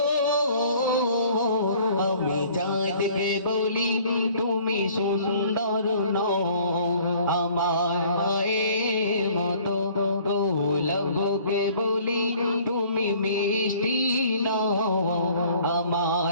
আমি চাঁদকে বলি তুমি সুন্দর নও, আমার মায়ের মতো গোলাপকে বলি তুমি মিষ্টি নও,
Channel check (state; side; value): inverted; both; correlation -0.54